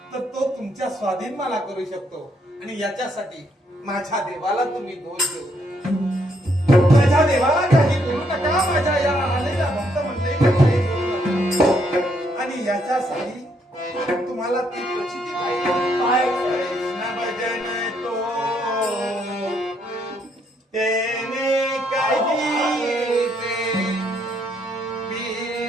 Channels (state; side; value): normal; both; correlation 0.72